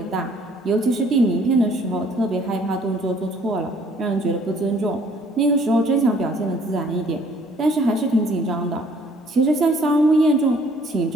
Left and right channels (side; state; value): both; normal; correlation 0.59